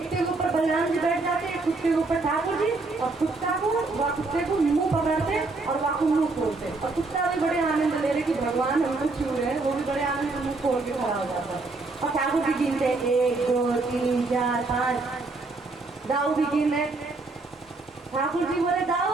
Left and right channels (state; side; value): quieter; left; 3.5 dB